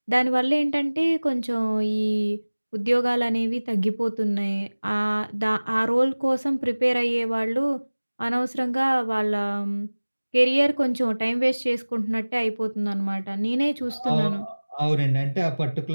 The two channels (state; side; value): inverted; both; correlation -1.00